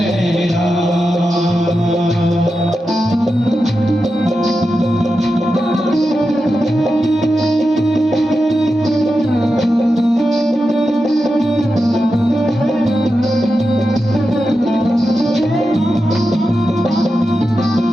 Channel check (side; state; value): both; normal; correlation 0.90